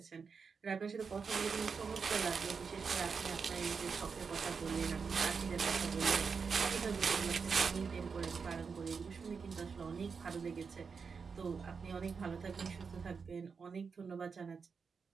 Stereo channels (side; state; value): left; quieter; 5.5 dB